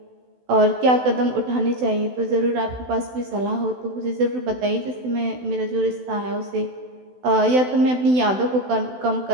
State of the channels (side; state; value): left; late; 16 ms